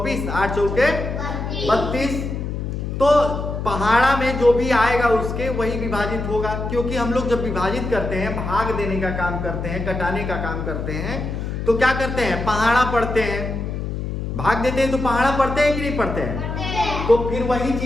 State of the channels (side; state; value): left; noise; hum, 4 dB below the sound